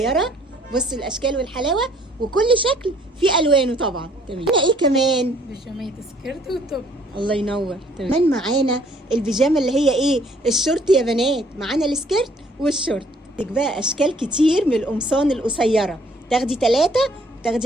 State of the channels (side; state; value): both; normal; correlation 0.61